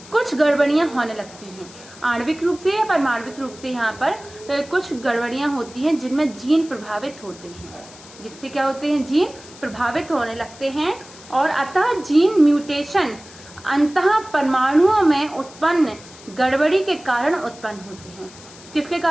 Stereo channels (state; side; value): noise; left; hiss, 20 dB below the sound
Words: कुछ गड़बड़ियां होने लगती हैं, आणविक रूप से या परमाणविक रूप से यहाँ पर कुछ गड़बड़ियां होती हैं जिनमें जीन प्रभावित होते हैं, जिससे क्या होते हैं, जीन प्रभावित होने लगते हैं। और अतः जीन म्यूटेशन अंतः परमाणुओं में उत्पन्न गड़बड़ी के कारण उत्पन्न होते हैं। किसके